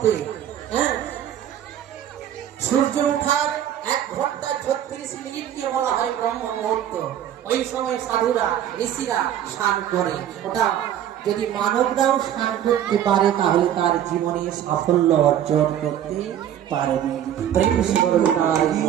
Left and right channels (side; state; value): left; quieter; 10.7 dB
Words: সূর্য ওঠার 1 ঘন্টা 36 মিনিটকে বলা হয় ব্রহ্ম মুহূর্ত। ওই সময় সাধুরা ঋষিরা স্নান করে। ওটা যদি মানবরাও স্নান করতে পারে তাহলে তার জীবনে সাফল্য অর্জন করতে পারবে।